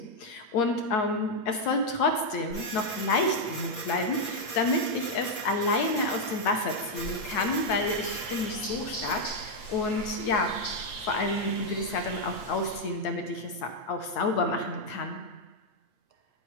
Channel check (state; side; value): late; right; 8.6 ms